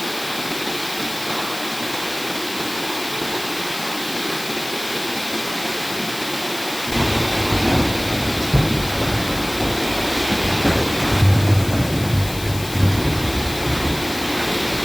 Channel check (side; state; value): left; noise; hiss, 12 dB below the sound